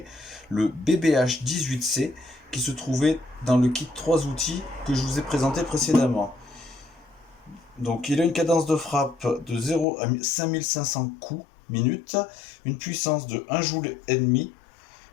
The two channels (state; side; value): drops out; right; at 9.9 s